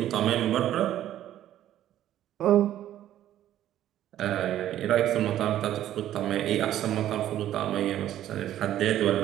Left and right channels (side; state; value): left; quieter; 12.2 dB